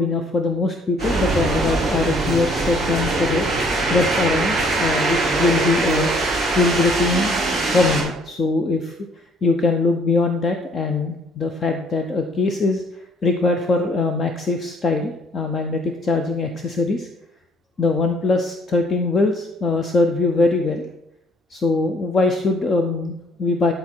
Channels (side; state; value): both; normal; correlation 0.62